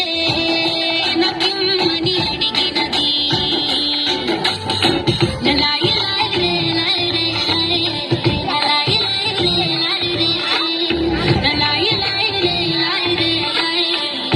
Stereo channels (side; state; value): both; identical; correlation 1.00